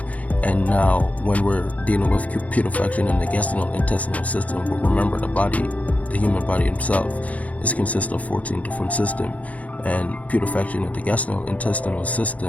And now when we're dealing with putrefaction in the gastrointestinal system, remember the human body itself is consists of 14 different systems, and putrefaction in the gastrointestinal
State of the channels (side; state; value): right; late; 0.069 ms